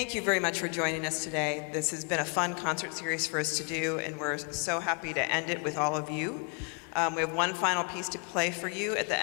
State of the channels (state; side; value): quieter; right; 36.0 dB